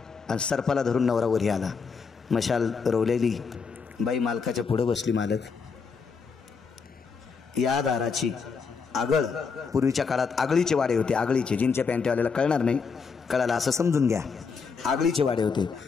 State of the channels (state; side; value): quieter; right; 5.4 dB